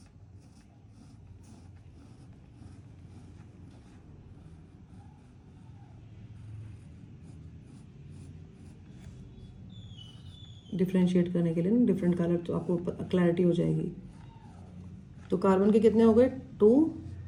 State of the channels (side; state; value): both; identical; correlation 1.00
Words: डिफ्रेंशिएट करने के लिए ना डिफरेंट कलर, तो आपको क्लैरिटी हो जाएगी। तो कार्बन के कितने हो गए? 2